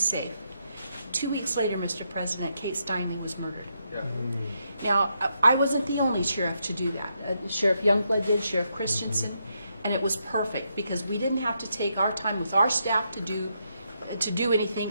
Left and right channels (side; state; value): both; inverted; correlation -0.80